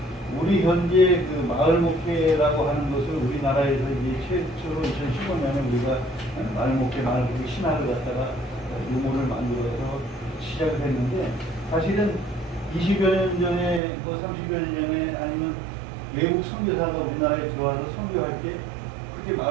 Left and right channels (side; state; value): left; drops out; at 13.8 s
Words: 우리 현재 그 마을 목회라고 하는 것을 우리나라에서 이제 최초로 2015년에 우리가 마을 목회 신학을 갖다가 유모를 만들어서 시작을 했는데, 사실은 20여 년 전에 30여 년 전에 아니면 외국 선교사가 우리나라에 들어와서 선교할 때 그렇게